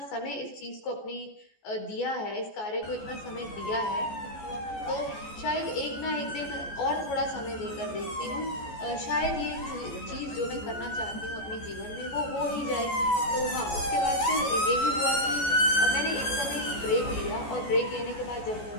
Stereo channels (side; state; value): right; late; 14 ms